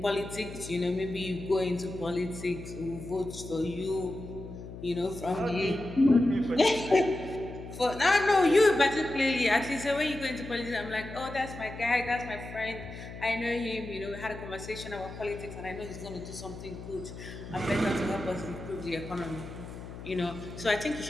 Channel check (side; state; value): left; noise; hum, 12 dB below the sound